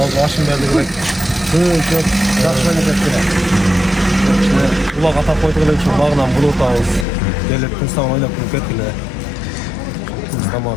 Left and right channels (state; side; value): drops out; right; at 7.1 s